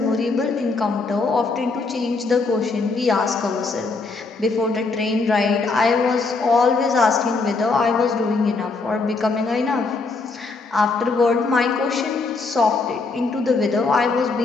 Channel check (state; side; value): quieter; right; 3.9 dB